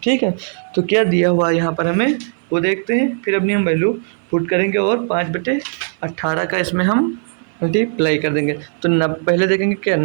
है, तो क्या दिया हुआ यहाँ पर हमें वो देखते हैं, फिर अपनी हम वैल्यू पुट करेंगे और 5/18 का इसमें हम मल्टीप्लाई कर देंगे। तो पहले देखेंगे क्या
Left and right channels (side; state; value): left; silent; 66 dB below the other